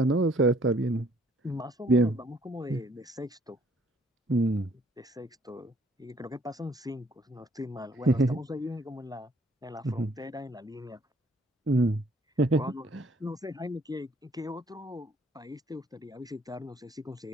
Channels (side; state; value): both; normal; correlation 0.62